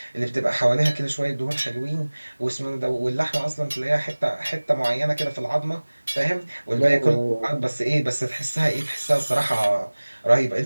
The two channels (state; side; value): inverted; both; correlation -1.00